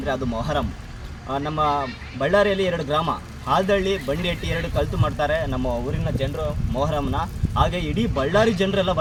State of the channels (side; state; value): both; identical; correlation 1.00